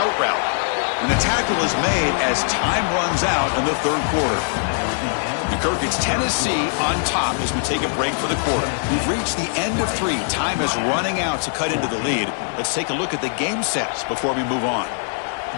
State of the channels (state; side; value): silent; right; digital silence